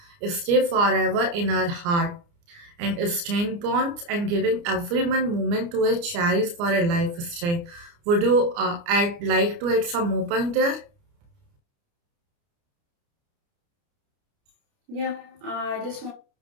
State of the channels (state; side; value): late; left; 29 ms